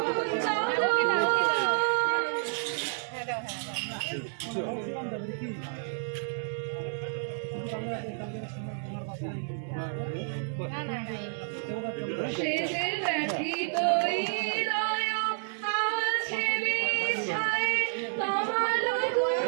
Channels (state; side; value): silent; left; 58 dB below the other